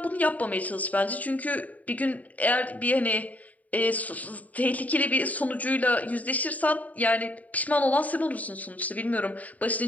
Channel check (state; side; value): late; right; 0.072 ms